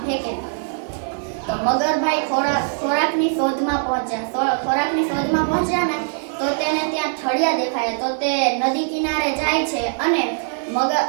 ફેંકે. તો મગરભાઈ ખોરાકની શોધમાં પહોંચ્યા ને તો તેને ત્યાં ઠળિયા દેખાયા. તો તે નદી કિનારે જાય છે અને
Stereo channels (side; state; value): left; silent; digital silence